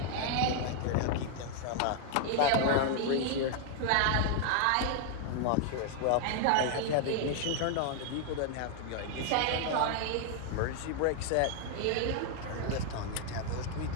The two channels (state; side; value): different; both; correlation 0.00